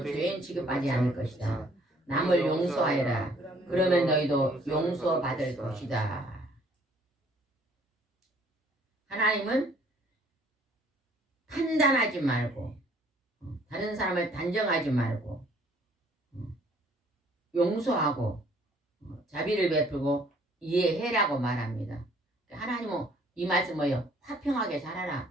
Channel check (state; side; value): normal; both; correlation 0.60